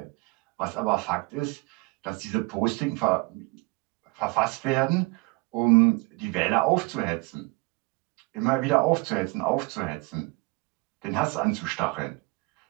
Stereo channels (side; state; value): left; quieter; 27.6 dB